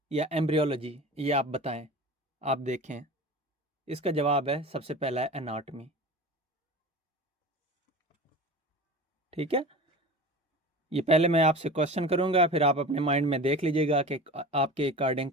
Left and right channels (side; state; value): both; normal; correlation 0.34